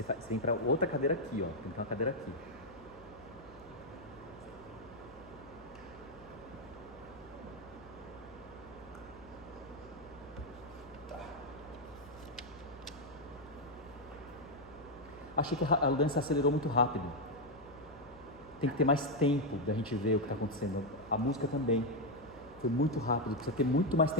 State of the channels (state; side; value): noise; left; hum, 23 dB below the sound